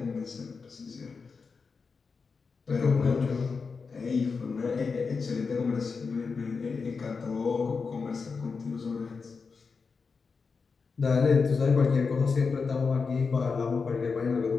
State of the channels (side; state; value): right; quieter; 5.0 dB